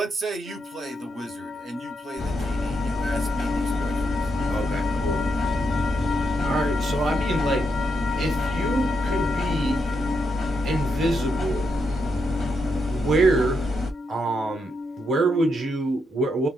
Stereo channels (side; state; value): both; normal; correlation 0.81